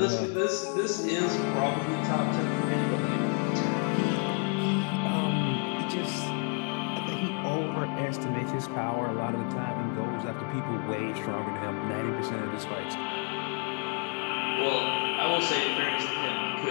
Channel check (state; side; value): quieter; right; 35.0 dB